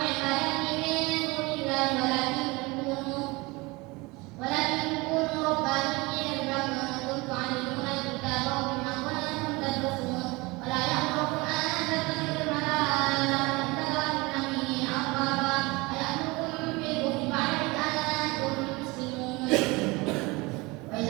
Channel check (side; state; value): left; quieter; 24.2 dB